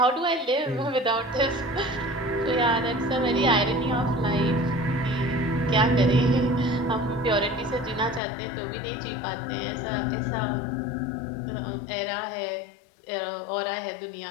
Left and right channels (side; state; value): right; drops out; at 8.2 s